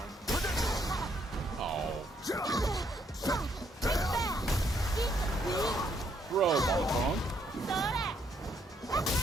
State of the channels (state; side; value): normal; both; correlation 0.72